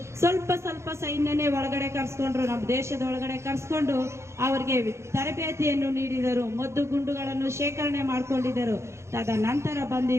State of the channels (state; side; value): late; left; 0.13 ms